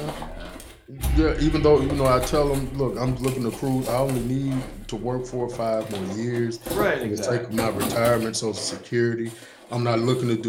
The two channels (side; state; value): both; identical; correlation 1.00